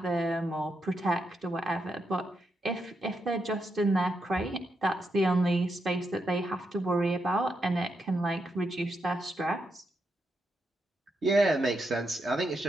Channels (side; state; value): both; normal; correlation 0.83